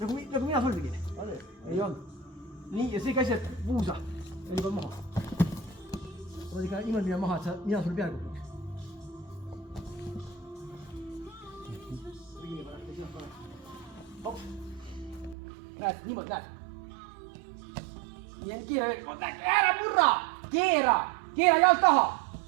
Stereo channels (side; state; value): left; drops out; at 15.4 s